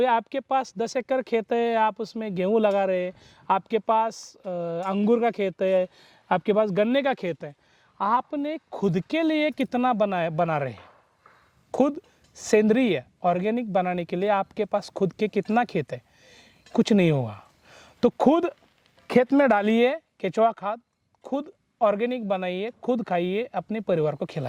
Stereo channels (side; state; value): both; identical; correlation 1.00